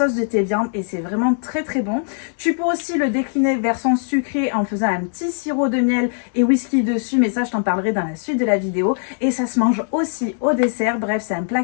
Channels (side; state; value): right; silent; 65 dB below the other